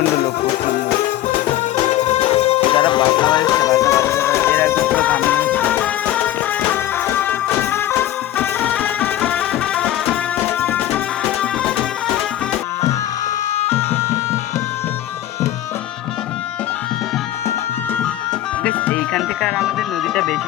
লোক, প্রচণ্ড। যারা বাজনা বাজাচ্ছে, বাজনা বাজাতে এরা একটু পুরো থামিয়ে এইখান থেকে। আর আমাদের নদীটা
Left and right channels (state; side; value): quieter; right; 13.3 dB